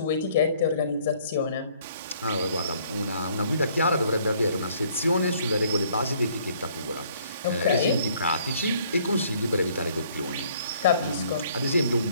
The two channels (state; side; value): inverted; both; correlation -0.62